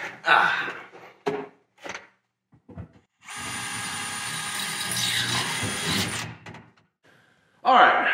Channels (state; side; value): identical; both; correlation 1.00